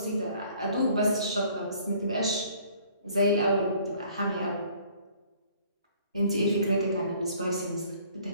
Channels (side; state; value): both; inverted; correlation -0.57